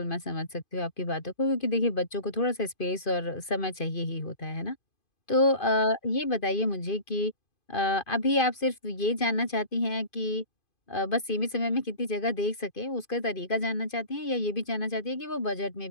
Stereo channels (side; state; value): right; late; 2.5 ms